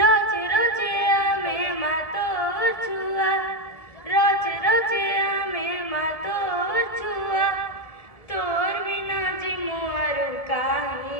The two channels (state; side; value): late; right; 1.7 ms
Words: রোজ আমি মা তোর ছুয়া রোজ রোজ আমি মা তোর ছুয়া তোর বিনা জিমু আরু